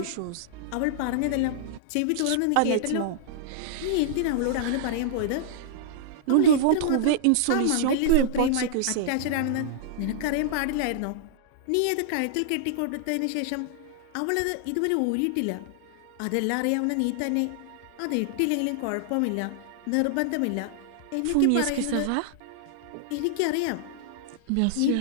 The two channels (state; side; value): different; both; correlation -0.01